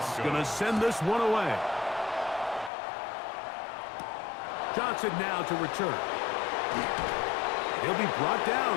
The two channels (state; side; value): drops out; right; at 2.7 s